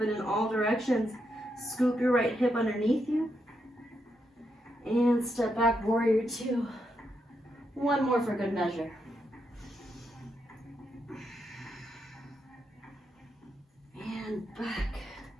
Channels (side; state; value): both; normal; correlation 0.82